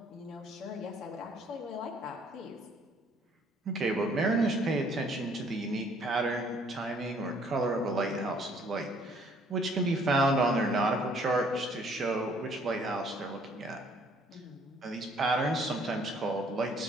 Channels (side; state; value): both; normal; correlation 0.61